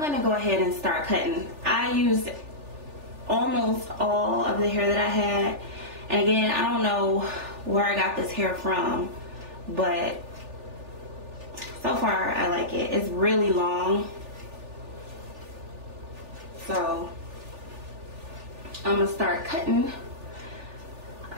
go ahead and start cutting. I used almost all of the hair that I had, and again, I don't know where I got this hair from, but so far I like it. It's really long, so I'm gonna start cutting.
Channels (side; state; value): left; late; 3.4 ms